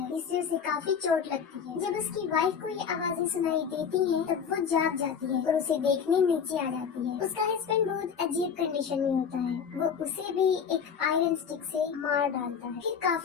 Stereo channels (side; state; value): right; quieter; 7.0 dB